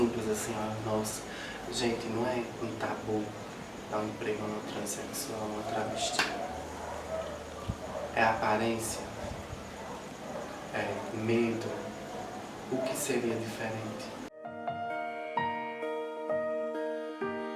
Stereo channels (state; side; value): identical; both; correlation 1.00